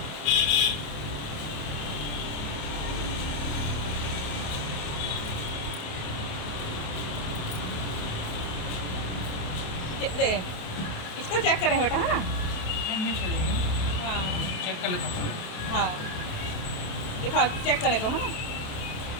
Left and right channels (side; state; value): right; late; 28 ms